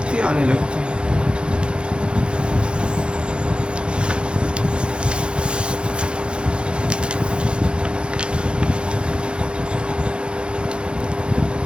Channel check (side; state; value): left; late; 0.054 ms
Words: आने लगती है।